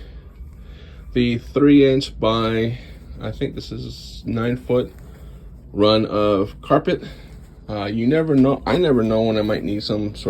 the 3" by, I think this is 9-foot run of carpet. You never know. I never know when I might need some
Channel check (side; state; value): both; identical; correlation 1.00